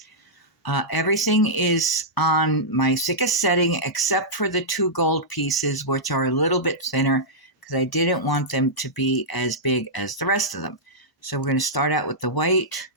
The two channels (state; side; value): normal; both; correlation -0.11